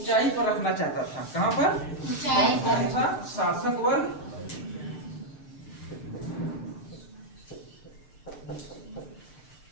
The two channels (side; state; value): right; late; 6.6 ms